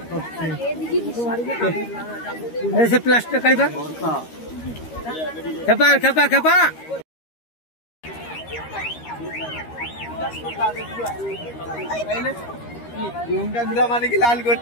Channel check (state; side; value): late; right; 13 ms